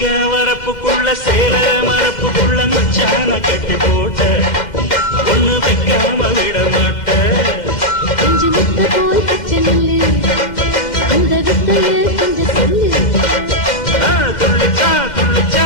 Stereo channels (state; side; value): late; right; 2.1 ms